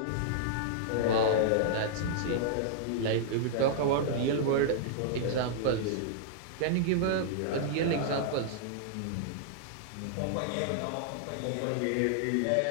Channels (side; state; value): both; different; correlation -0.01